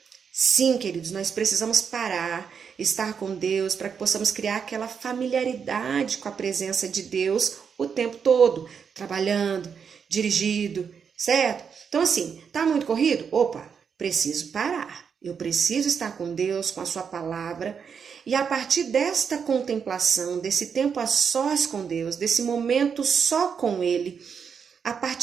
Sim, queridos, nós precisamos parar, estar com Deus, para que possamos criar aquela familiaridade com a presença de Deus o tempo todo, trabalhando, dirigindo, certo? Então, assim, tá muito corrido? Opa, preciso parar. Eu preciso estar com Deus, com a sua palavra. E a partir desta contemplação, desse tempo a sós com Deus, desse momento só com Ele, a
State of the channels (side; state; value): left; quieter; 6.7 dB